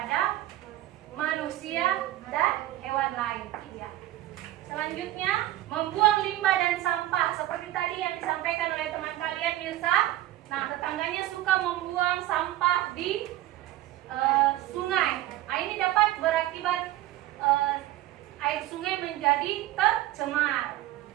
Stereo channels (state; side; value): quieter; left; 15.0 dB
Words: manusia dan hewan lain. Iya. Selanjutnya, membuang limbah dan sampah seperti tadi yang disampaikan oleh teman kalian, Mirsa. Nah, tetangganya suka membuang sampah di sungai. Nah, ini dapat berakibat air sungai menjadi tercemar.